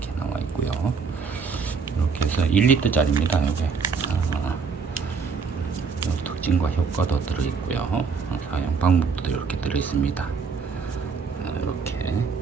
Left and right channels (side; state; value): left; quieter; 5.5 dB